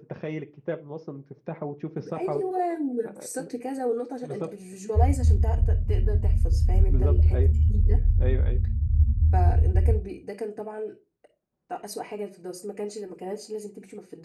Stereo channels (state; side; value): identical; both; correlation 1.00